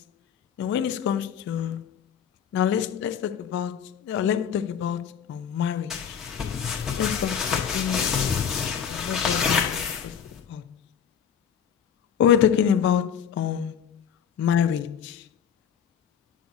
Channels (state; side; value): quieter; right; 8.0 dB